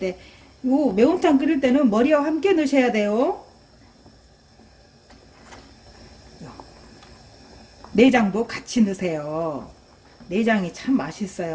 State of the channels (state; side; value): identical; both; correlation 1.00